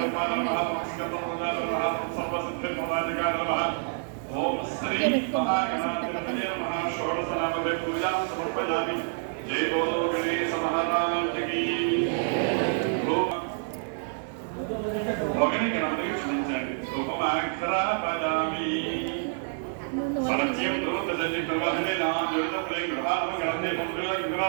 నమః స్కందముదాయ నమః సర్వసిద్ధిప్రదాయకాయ నమః ఓం శ్రీ మహాగణాధిపతయే నమః షోడశనామదే పూజాం సమర్పయామి. జై బోలో గణేశ మహారాజ్ కీ. ఒకని గణపతికి క్షమించండి. ఉపమాక్షరాపదామి సరస్యం దూతజలి ప్రవహనే నామృతప్రే గ్రహామ గణతే మంత్రుల గ్రహ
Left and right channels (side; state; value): left; silent; digital silence